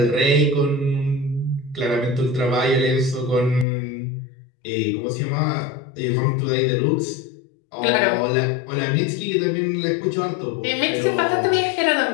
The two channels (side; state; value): right; drops out; at 3.7 s